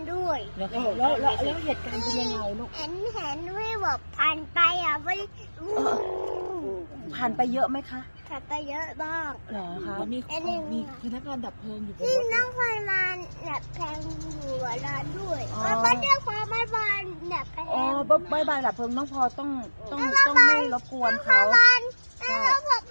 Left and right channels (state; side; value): inverted; both; correlation -1.00